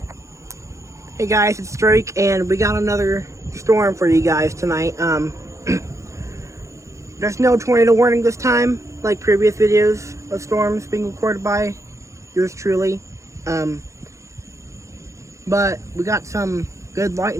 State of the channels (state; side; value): late; left; 0.15 ms